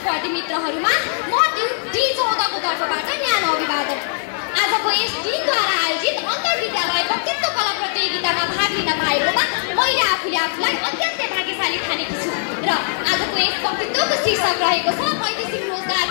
मित्रहरूमा म D14 को तर्फबाट न्यानो अभिवादन। आजको यस टिमद्वारा आयोजित अन्तर्विद्यालय वक्तृत्व कला प्रतियोगितामा भाग लिन पाएकोमा मैले आफूले आफूलाई अत्यन्तै भाग्यशाली ठानेकी छु र आजको यस वक्तृत्वको शीर्षक रहेको छ वैदेशिक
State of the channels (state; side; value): silent; right; digital silence